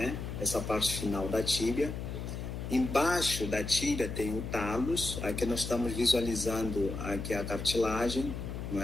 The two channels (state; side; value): noise; left; hum, 6 dB below the sound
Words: Essa parte final da tíbia. Embaixo da tíbia tem o talos, aqui nós estamos visualizando aqui a cartilagem, não